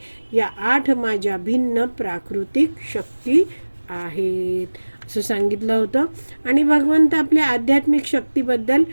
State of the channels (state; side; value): inverted; both; correlation -1.00